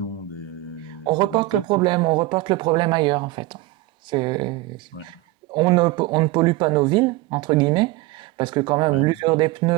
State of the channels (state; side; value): quieter; left; 18.4 dB